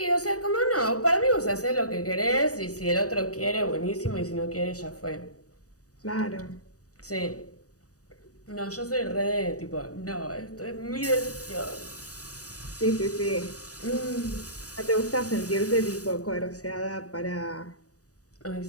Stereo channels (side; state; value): right; late; 0.66 ms